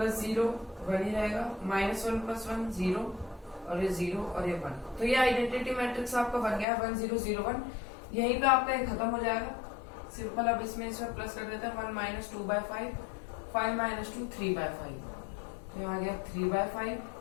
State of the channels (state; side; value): drops out; right; at 6.7 s